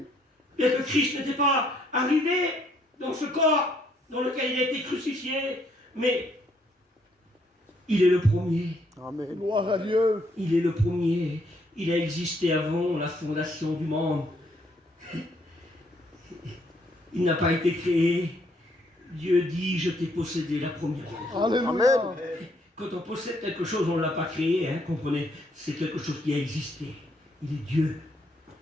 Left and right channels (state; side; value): normal; both; correlation 0.70